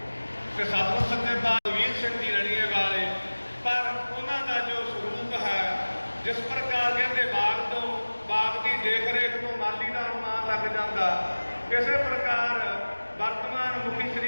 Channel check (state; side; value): inverted; both; correlation -1.00